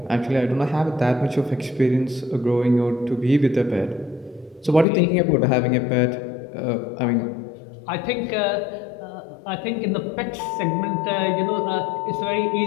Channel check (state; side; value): drops out; right; at 4.9 s